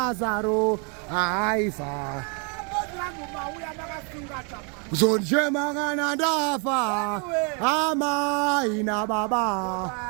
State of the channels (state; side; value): quieter; left; 36.2 dB